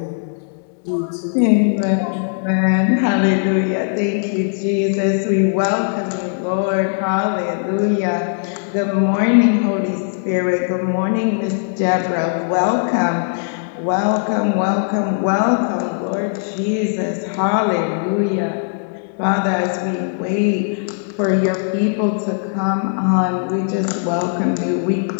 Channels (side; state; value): right; silent; digital silence